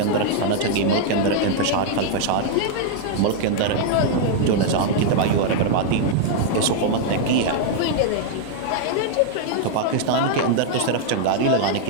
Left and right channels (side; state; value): both; different; correlation -0.01